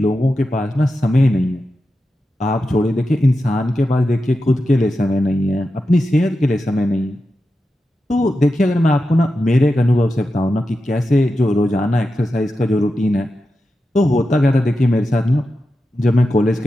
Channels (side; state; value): both; normal; correlation 0.90